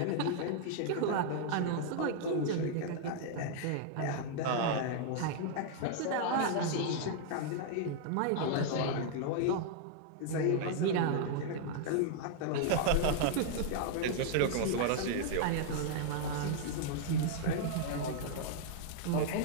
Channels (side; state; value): both; different; correlation -0.01